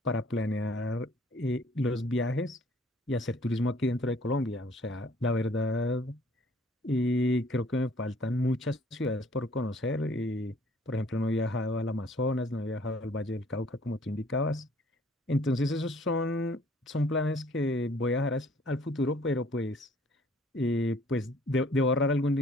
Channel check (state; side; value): normal; both; correlation 0.58